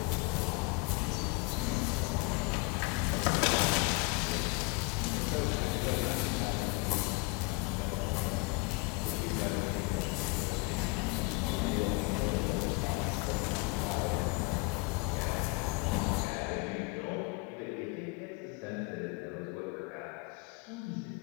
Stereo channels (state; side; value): quieter; right; 26.8 dB